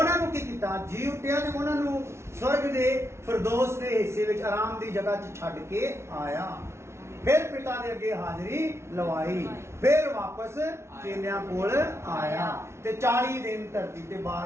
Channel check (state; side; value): late; left; 0.13 ms